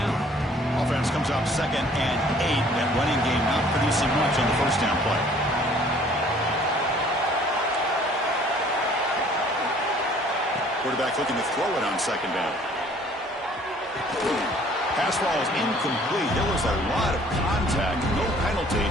Offense comes out 2nd and 8. That running game not producing much on the first down play. Quarterback looking to throw it on 2nd down. Pass ball is incomplete. There was a lot of contact. No penalty.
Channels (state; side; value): normal; both; correlation 0.56